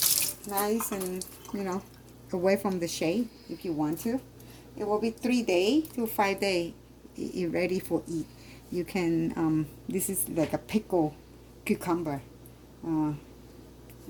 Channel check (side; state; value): both; identical; correlation 1.00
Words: nice and away from the shade if you want to. It will be 3 days to 5 days. It's ready for eat. You can, this is like a pickled cucumber,